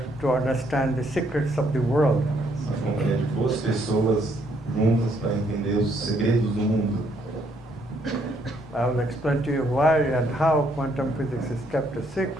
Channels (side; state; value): both; normal; correlation 0.70